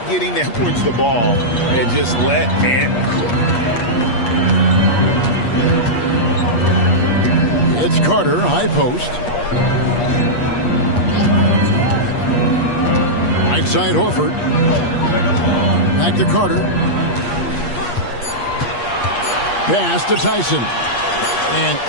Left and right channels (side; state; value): right; late; 8.4 ms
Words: getting Edwards the ball and just let Ant cook. It's Carter, high post. Right side Horford. Back to Carter. Pass to Tyson. And